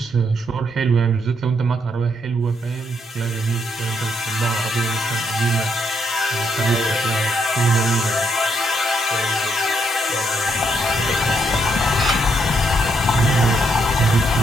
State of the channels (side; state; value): both; normal; correlation 0.75